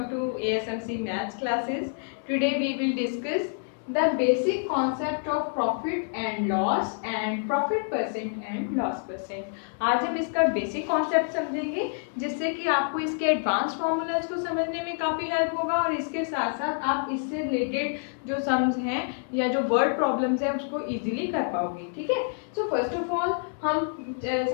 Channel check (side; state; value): right; silent; 60 dB below the other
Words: to ASMC Maths classes. Today we will discuss the basic concept of profit and loss and profit percent and loss percent. आज हम इसका basic concept समझेंगे जिससे कि आपको इसके advance formulas को समझने में काफ़ी हेल्प होगा और इसके साथ साथ आप इससे रिलेटेड जो सम्स हैं या जो वर्ड प्रॉब्लम्स हैं उसको इजीली कर पाओगे. ठीक है. सो फर्स्ट ऑफ ऑल हम